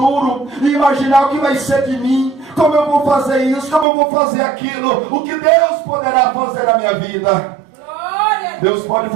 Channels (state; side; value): drops out; left; at 3.9 s